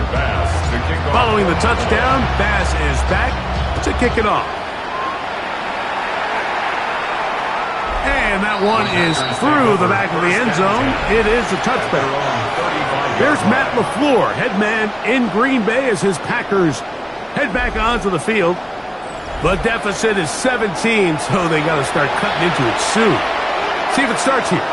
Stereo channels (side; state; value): both; identical; correlation 1.00